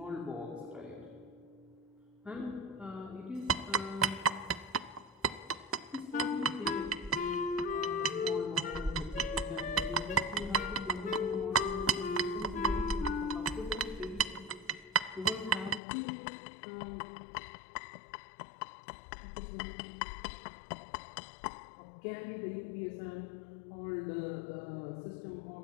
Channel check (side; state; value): right; drops out; at 15.8 s